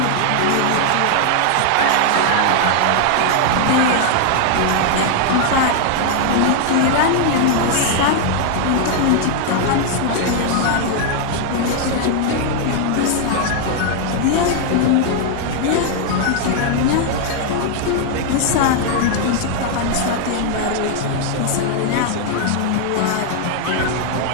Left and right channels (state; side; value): different; both; correlation 0.00